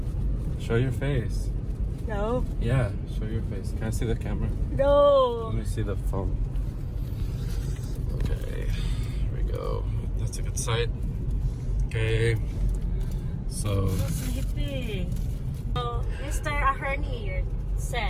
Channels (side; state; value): both; identical; correlation 1.00